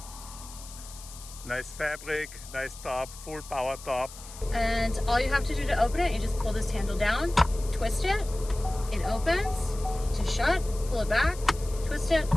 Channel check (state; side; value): noise; left; hiss, 16 dB below the sound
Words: Nice fabric, nice top, full power top. And all you have to do to open it, you just pull this handle down, twist it, it opens. To shut, pull it back, twist it,